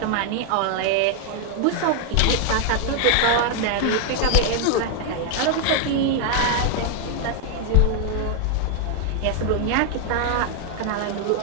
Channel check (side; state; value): both; different; correlation 0.00